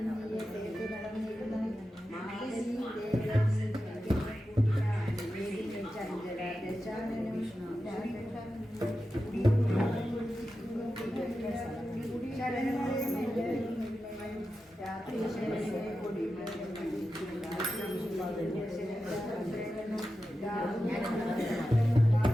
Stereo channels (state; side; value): normal; both; correlation 0.91